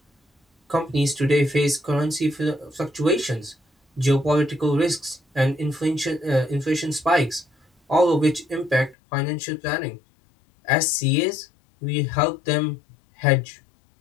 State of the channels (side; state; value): right; drops out; at 9.0 s